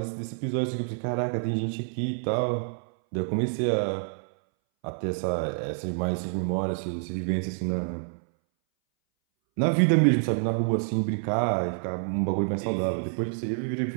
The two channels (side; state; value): left; silent; 60 dB below the other